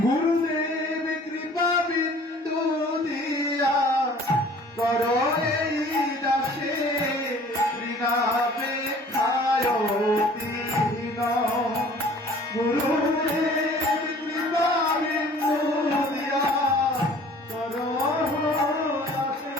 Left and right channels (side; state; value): both; normal; correlation 0.50